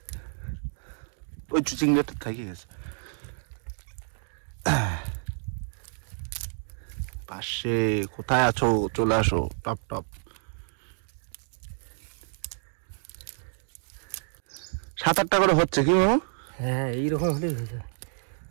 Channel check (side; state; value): left; silent; 58 dB below the other